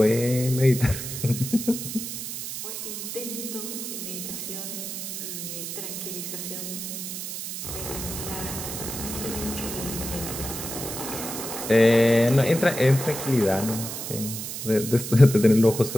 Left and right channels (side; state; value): right; noise; hiss, 6 dB below the sound